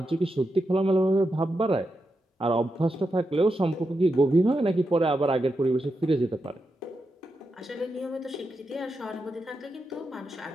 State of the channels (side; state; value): both; normal; correlation 0.87